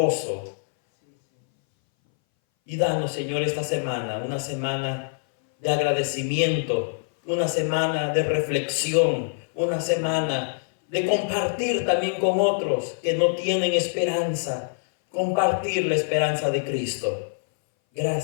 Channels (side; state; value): right; silent; 60 dB below the other